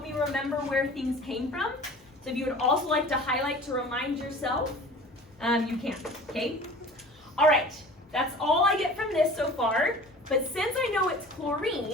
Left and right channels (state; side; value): normal; both; correlation 0.42